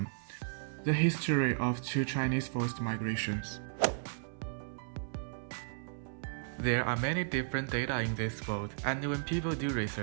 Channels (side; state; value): left; silent; 55 dB below the other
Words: the history of two Chinese forced migrations. There are many different data in this world, and when people do